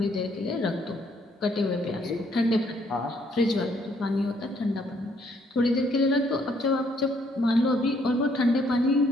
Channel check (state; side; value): normal; both; correlation 0.68